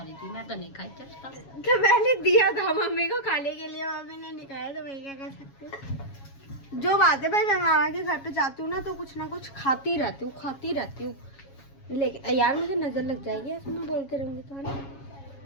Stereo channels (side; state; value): right; late; 7.3 ms